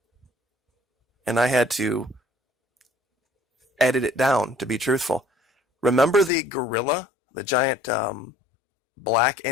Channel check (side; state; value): right; drops out; at 6.3 s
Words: And I had to edit it down, to be truthful. Remember the gorilla, the giant black